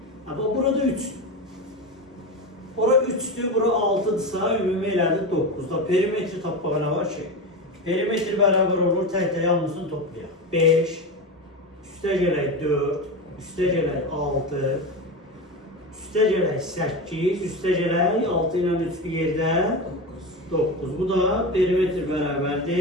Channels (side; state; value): both; normal; correlation 0.21